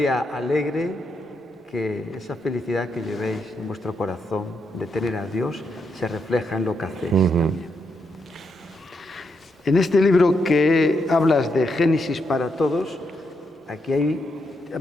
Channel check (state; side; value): normal; both; correlation 0.81